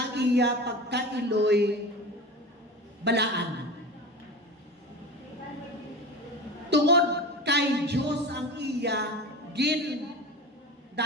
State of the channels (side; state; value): both; normal; correlation 0.30